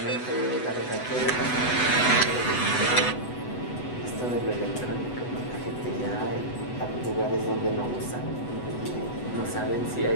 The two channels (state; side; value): late; right; 8.1 ms